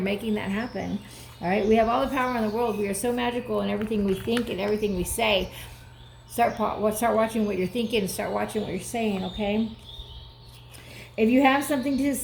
that happen, all right? We have all the power in the world. We are so magical in everything we think and everything we say. Start watching what you're thinking and start watching what you're saying, okay? If you have something to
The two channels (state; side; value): identical; both; correlation 1.00